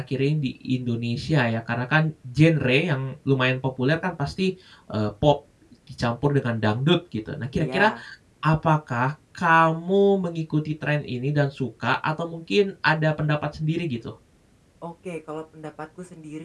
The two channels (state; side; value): identical; both; correlation 1.00